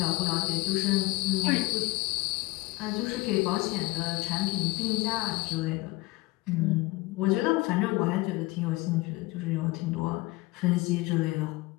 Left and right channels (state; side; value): quieter; right; 21.5 dB